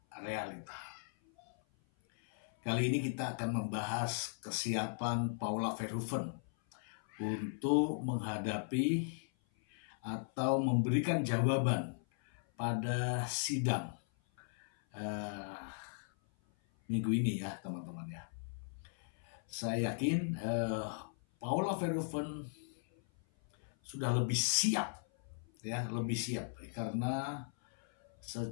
realita. Kali ini kita akan membahas kesiapan Paula Verhoeven untuk menghadapi atau memberikan jawaban pada sidang minggu ini ya teman-teman ya. Saya yakin Paula Verhoeven sudah lebih siap ya, lebih siap karena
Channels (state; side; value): silent; right; 53 dB below the other